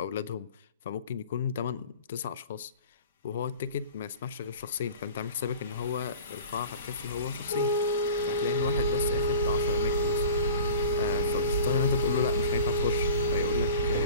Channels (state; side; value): inverted; both; correlation -0.39